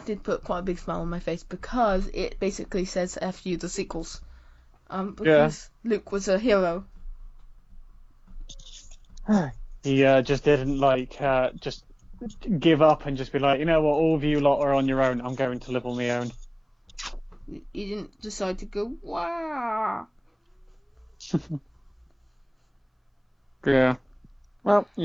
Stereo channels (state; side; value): identical; both; correlation 1.00